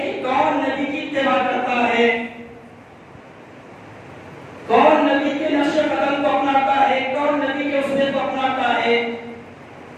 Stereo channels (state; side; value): identical; both; correlation 1.00